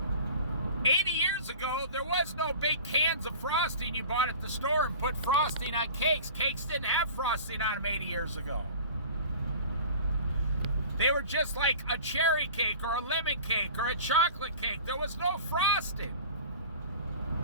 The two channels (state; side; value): inverted; both; correlation -0.40